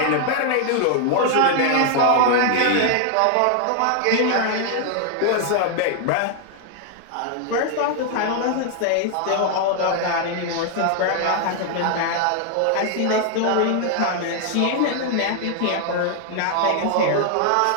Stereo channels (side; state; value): both; different; correlation 0.00